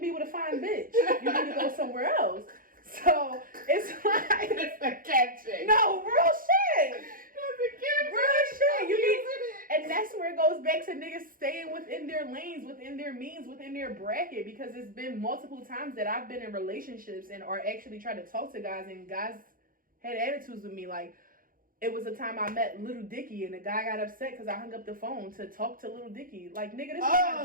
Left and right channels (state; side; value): late; left; 0.41 ms